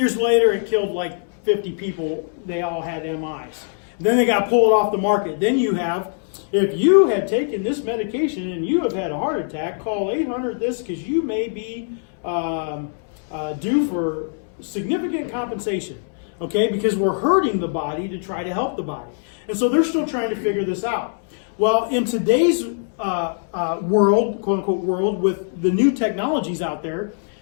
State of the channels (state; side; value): silent; right; 64 dB below the other